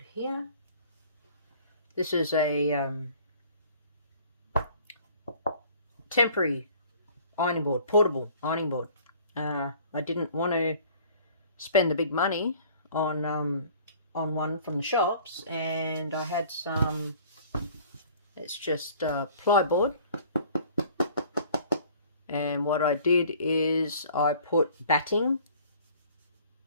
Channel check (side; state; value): both; inverted; correlation -0.51